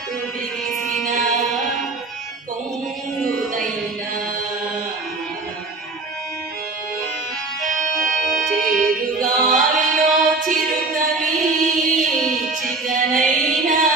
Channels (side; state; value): left; quieter; 3.5 dB